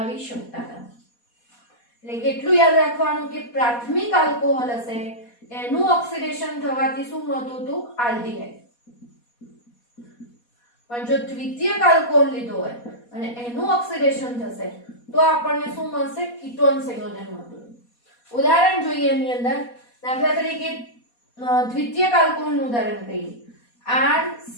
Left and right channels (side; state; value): right; late; 4.2 ms